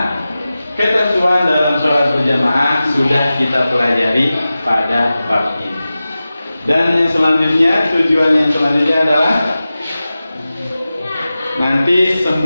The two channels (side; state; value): both; inverted; correlation -0.95